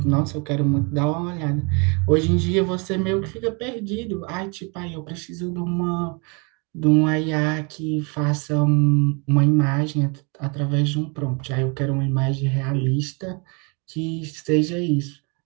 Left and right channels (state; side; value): quieter; left; 32.5 dB